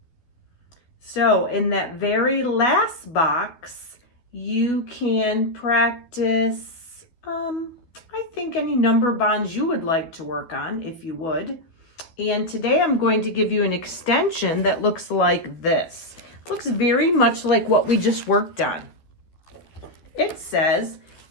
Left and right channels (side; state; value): right; late; 12 ms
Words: So in that very last box, you can practice, I think any number bonds you would like to work on, if you would. And today I'm going to give you an extension that looks like this. Looks very much like what we just worked on. It says